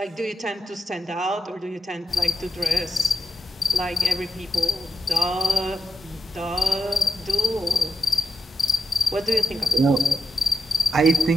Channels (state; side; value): normal; both; correlation 0.83